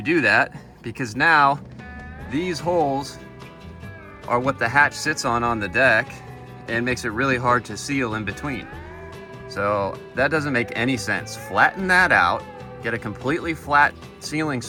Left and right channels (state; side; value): identical; both; correlation 1.00